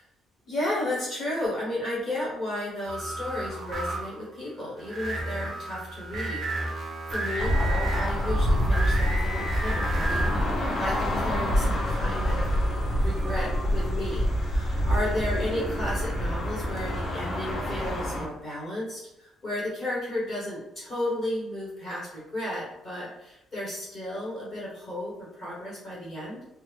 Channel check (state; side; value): normal; both; correlation 0.82